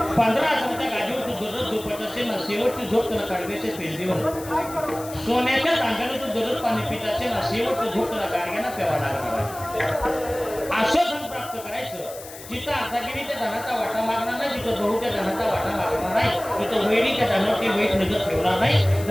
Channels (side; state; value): left; noise; hiss, 15 dB below the sound